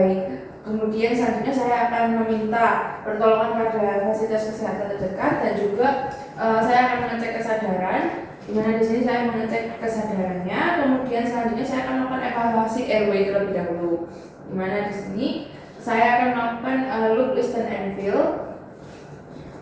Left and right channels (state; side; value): identical; both; correlation 1.00